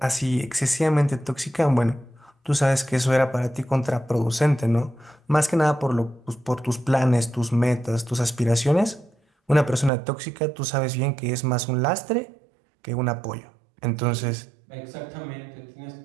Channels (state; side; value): drops out; left; at 9.9 s